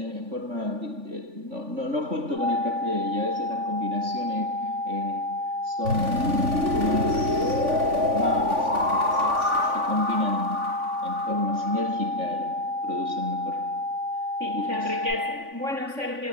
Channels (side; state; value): left; late; 3.5 ms